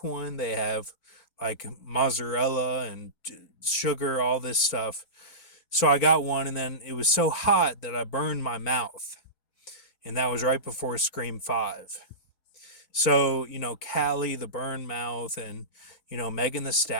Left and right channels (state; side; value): late; right; 4.4 ms